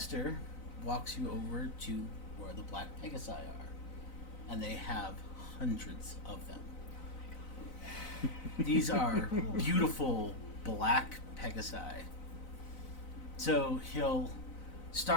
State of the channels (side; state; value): right; late; 4.0 ms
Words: walks you over to where the black Pegasi are, and they have hundreds of them. These are beautiful black Pegasi. So he'll